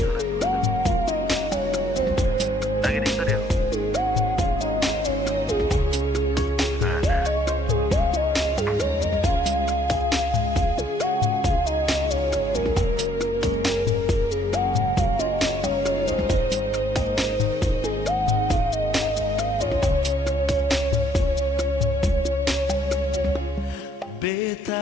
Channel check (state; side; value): normal; both; correlation 0.67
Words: Lagi di studio. Ada.